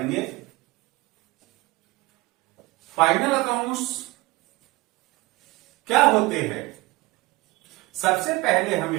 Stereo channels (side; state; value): left; quieter; 21.5 dB